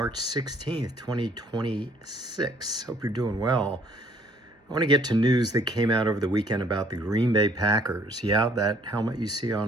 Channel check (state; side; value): normal; both; correlation 0.61